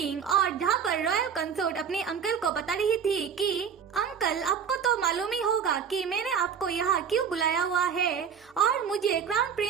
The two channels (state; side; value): quieter; left; 7.2 dB